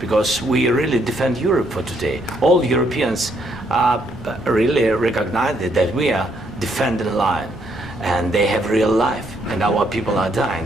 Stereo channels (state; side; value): noise; right; hum, 20 dB below the sound